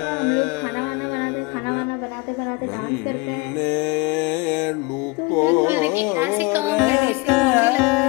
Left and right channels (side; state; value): right; quieter; 25.0 dB